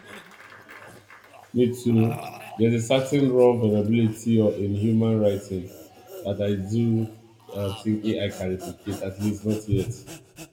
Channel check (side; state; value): both; identical; correlation 1.00